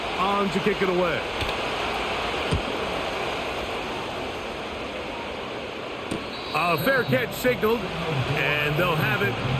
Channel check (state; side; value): identical; both; correlation 1.00